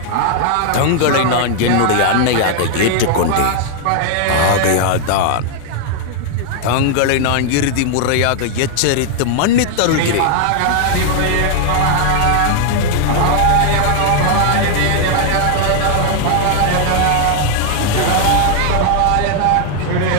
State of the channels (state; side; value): different; both; correlation 0.00